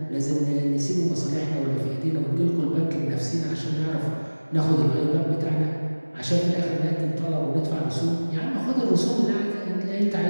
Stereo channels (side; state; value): both; inverted; correlation -1.00